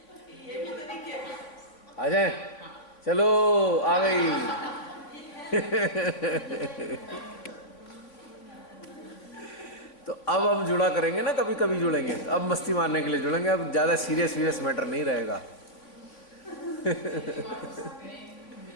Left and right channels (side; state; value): right; late; 3.5 ms